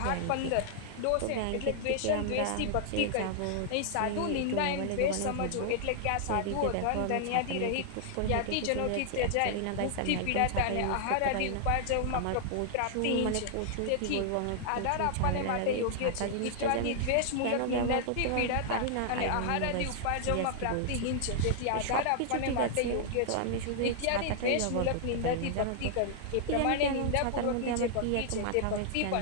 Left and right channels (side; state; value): both; different; correlation -0.01